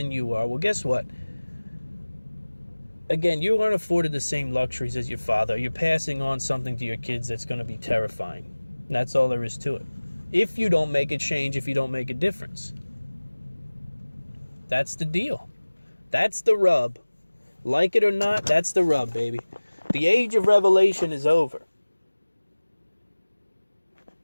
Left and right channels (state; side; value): inverted; both; correlation -1.00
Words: you are. Well, guess what? Again, you aren't afforded the same luxuries as your father. You're passing on something to your kids that's going to be terrifying. And that's all there is to it. If you don't make a change, if you don't make a difference. That's the deal. That's the rub. Like it or not, that's the rub, baby. The age of revelation is over.